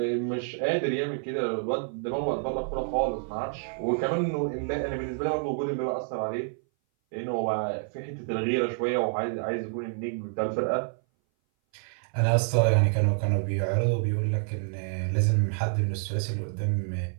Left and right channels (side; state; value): left; silent; 58 dB below the other